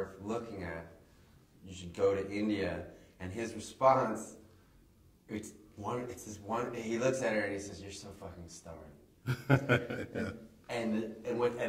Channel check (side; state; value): both; identical; correlation 1.00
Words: looking at. You should go to India. And his response, it's this one, he looks at her and he says, you're so fucking stubborn. and